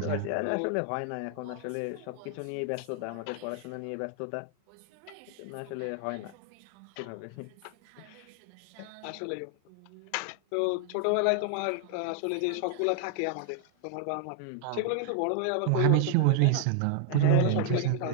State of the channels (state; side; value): different; both; correlation 0.00